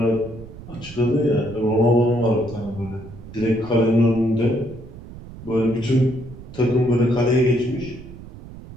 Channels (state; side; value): noise; right; rumble, 16 dB below the sound